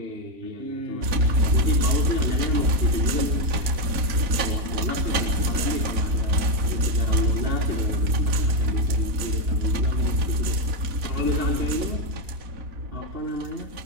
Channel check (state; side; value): late; left; 4.0 ms